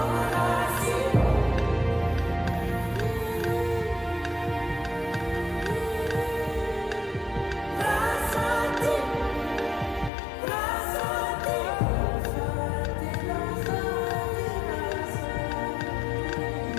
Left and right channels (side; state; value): right; drops out; at 10.1 s